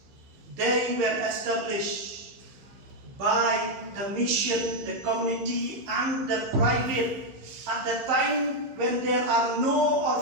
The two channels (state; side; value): late; left; 15 ms